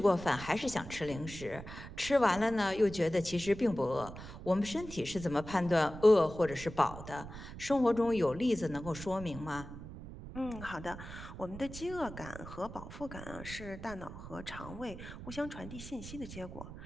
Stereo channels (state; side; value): noise; right; rumble, 12 dB below the sound